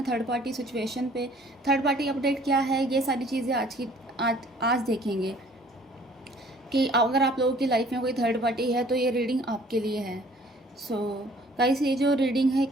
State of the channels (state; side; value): normal; both; correlation 0.55